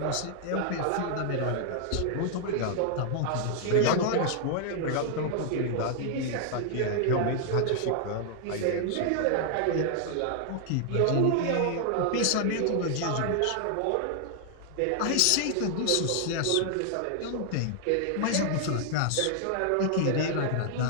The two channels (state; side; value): different; both; correlation 0.00